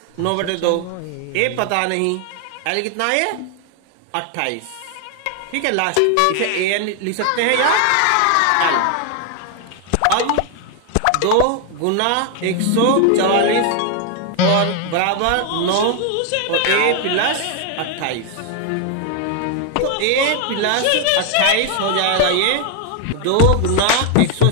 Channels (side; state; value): both; different; correlation 0.00